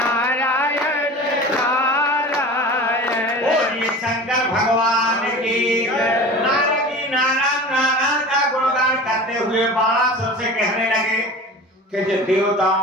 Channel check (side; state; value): both; normal; correlation 0.36